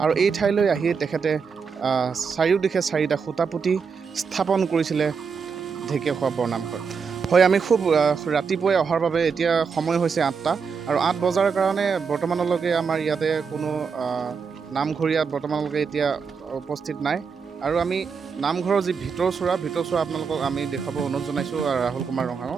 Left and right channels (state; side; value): quieter; left; 5.7 dB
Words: আৰু এই ঠাইলৈ আহি তেখেতে চাৰিওদিশে 4টা খুঁটা পুতি স্থাপন কৰিছিলে ঢেকীয়াখোৱা বৰনামঘৰ। হয়, আমি খুব ৰাতিপুৱাই অহাৰ বাবে এতিয়া সময় হৈছে 8টা, আৰু 8 বজাৰ কাৰণে বৰ্তমানলৈকে আমাৰ ইয়াতে কোনো নামঘৰীয়া বৰ্তমানলৈকে এতিয়া উপস্থিত নাই। আৰু আমি নামঘৰৰ যি ভিতৰচোৰা আপোনালোকক আমি দেখুৱাব অনুৰোধ জনাইছোঁ ৰাহুল কুমাৰ